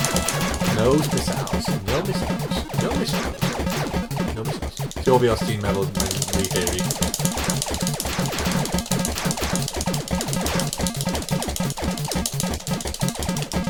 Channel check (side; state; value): both; identical; correlation 1.00